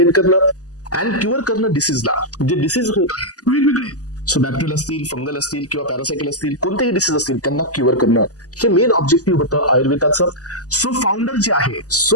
करणं, अँड क्युअर करणं डिसीजला. जे डिसीज होत आहेत वेगवेगळे, सो बॅक्टेरियल असतील, फंगल असतील, किंवा पॅरासायकल असतील, कोणतेही डिसीज असतील त्यांना क्युअर करणं, हे मेन ऑब्जेक्टिव्ह होतं आयुर्वेदाचं. सो फाउंडर जे आहे,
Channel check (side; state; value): right; late; 0.67 ms